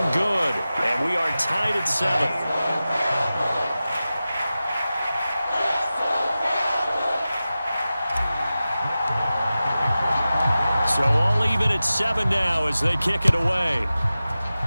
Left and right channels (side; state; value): both; inverted; correlation -0.95